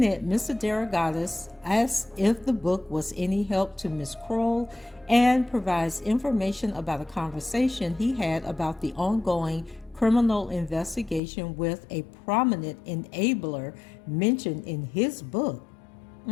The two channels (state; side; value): drops out; right; at 11.2 s